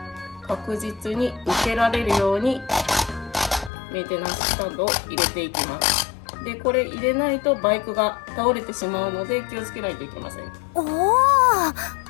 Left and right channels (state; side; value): drops out; right; at 3.7 s